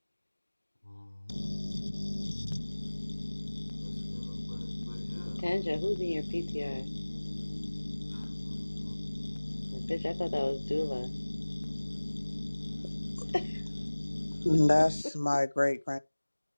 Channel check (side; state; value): both; inverted; correlation -1.00